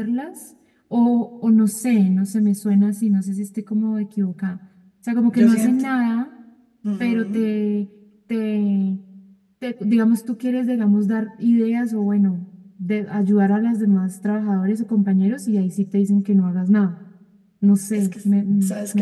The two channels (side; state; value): both; identical; correlation 1.00